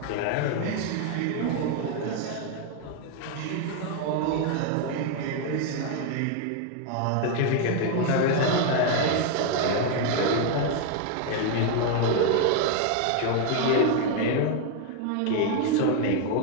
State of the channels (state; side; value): different; both; correlation 0.01